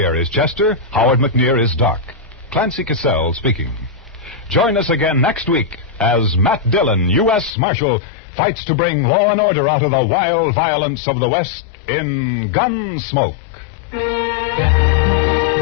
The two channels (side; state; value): right; drops out; at 7.5 s